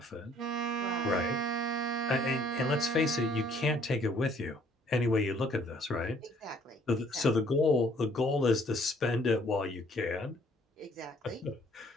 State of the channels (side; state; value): both; normal; correlation 0.61